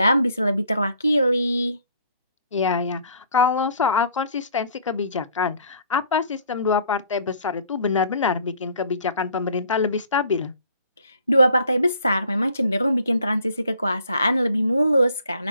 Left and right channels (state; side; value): inverted; both; correlation -0.58